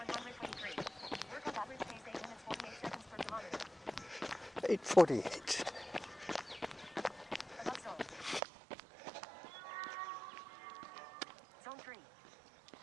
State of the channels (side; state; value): left; drops out; at 8.4 s